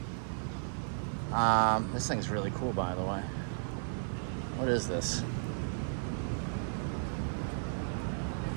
This thing's really cool, by the way. What is this?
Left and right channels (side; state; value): left; silent; digital silence